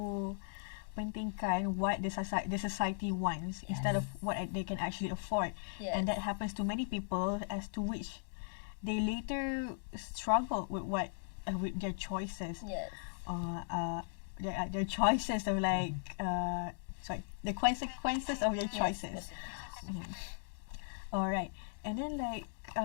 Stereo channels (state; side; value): silent; right; digital silence